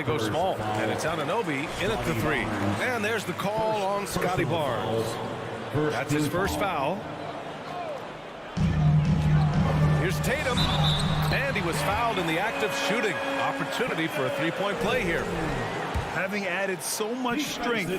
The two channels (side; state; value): both; identical; correlation 1.00